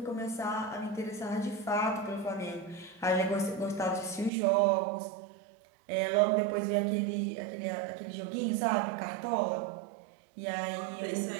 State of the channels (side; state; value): left; drops out; at 4.3 s